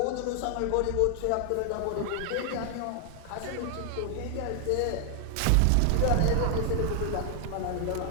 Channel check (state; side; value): different; both; correlation 0.00